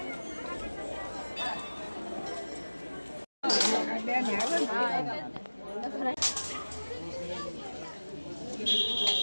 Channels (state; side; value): inverted; both; correlation -1.00